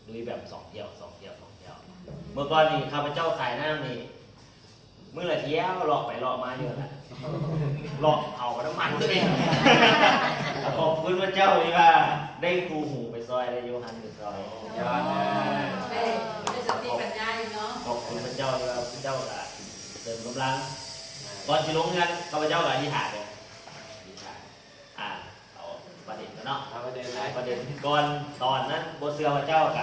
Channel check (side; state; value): both; identical; correlation 1.00